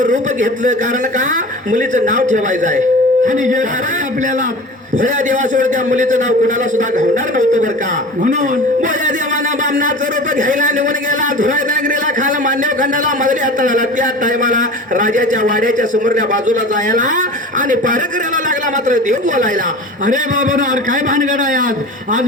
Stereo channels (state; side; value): normal; both; correlation 0.36